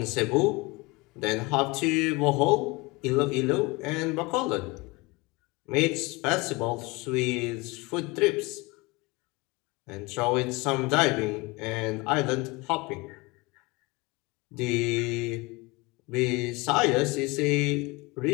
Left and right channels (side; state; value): right; quieter; 24.4 dB